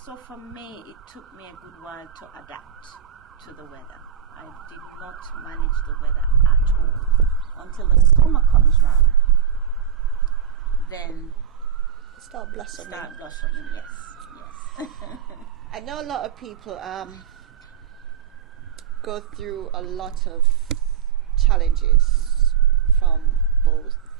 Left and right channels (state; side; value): quieter; left; 8.3 dB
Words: for me, it took me a good while to adapt to the weather. I did not manage the weather at all until the summer comes round. Then start blossoming. Yes. I know a lot of people go through a lot of challenges from both